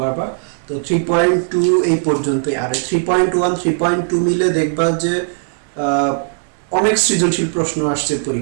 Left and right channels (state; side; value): silent; left; digital silence